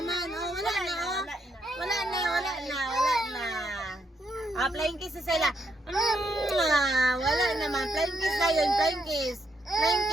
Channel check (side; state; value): both; normal; correlation 0.78